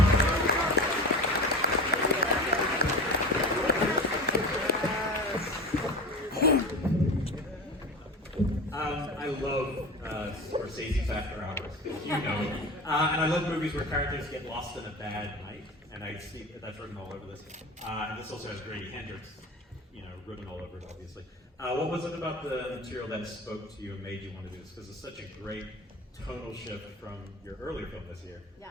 I love Scorsese's After Hours, because you know, and I love movies where characters get lost in a bad night, and I see that's written all over this. And this also has Grady Hendrix, written all over it, obviously. What was it about the material that spoke to you and made you want to do this? Because it's such a great tonal shift from your earlier film this year.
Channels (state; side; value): normal; both; correlation 0.31